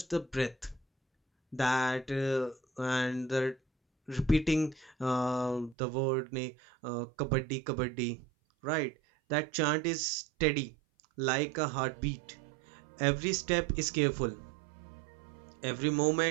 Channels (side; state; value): left; drops out; at 5.8 s